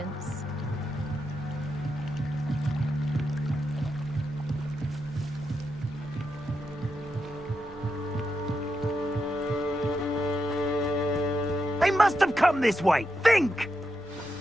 They must have come this way. Think!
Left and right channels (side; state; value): both; normal; correlation 0.85